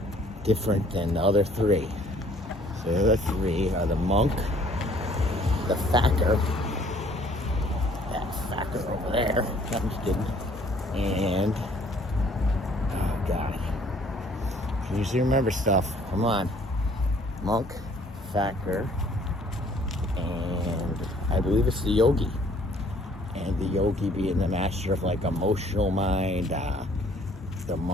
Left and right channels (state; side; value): normal; both; correlation 0.58